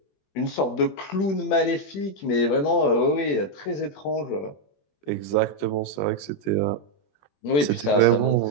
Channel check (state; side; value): late; right; 21 ms